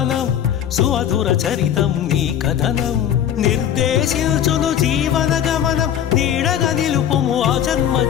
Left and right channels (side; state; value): right; quieter; 9.9 dB